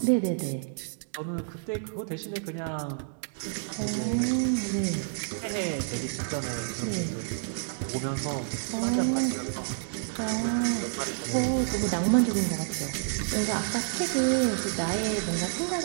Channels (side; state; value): left; silent; digital silence